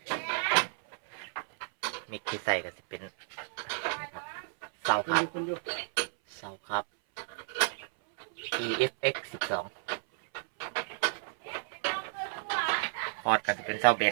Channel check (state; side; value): silent; left; 56 dB below the other